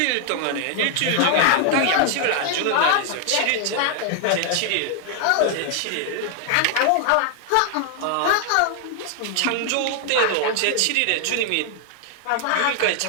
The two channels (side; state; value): both; different; correlation 0.00